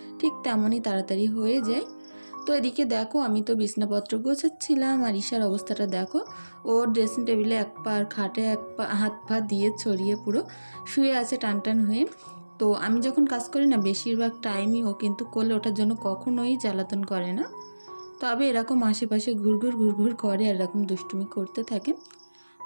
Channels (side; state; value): both; inverted; correlation -1.00